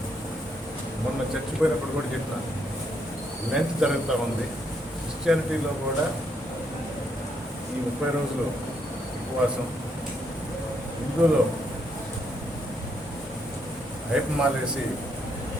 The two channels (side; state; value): both; normal; correlation 0.75